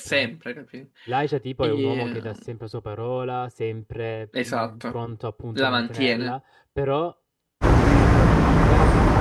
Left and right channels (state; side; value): identical; both; correlation 1.00